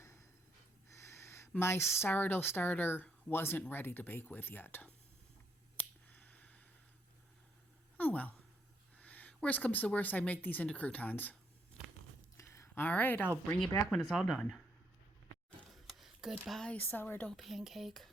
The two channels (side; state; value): both; normal; correlation 0.73